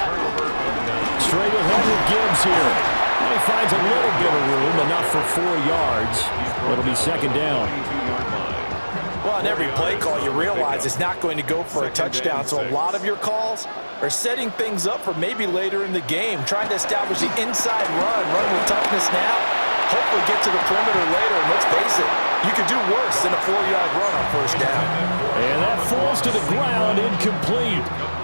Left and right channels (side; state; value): both; inverted; correlation -1.00